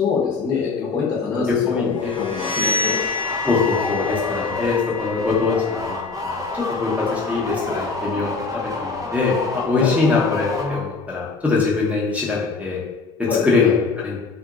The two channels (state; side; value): quieter; right; 4.1 dB